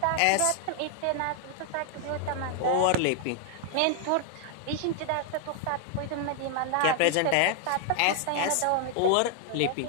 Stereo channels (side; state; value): both; different; correlation 0.00